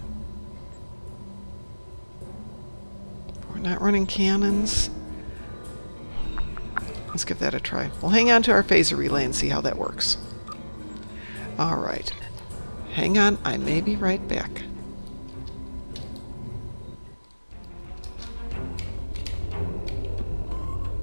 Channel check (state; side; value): inverted; both; correlation -1.00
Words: We're not running cannons. Let's give that a try. We'll hang on to our phaser relay and see how that works. Alright. Hang on, I may be right back.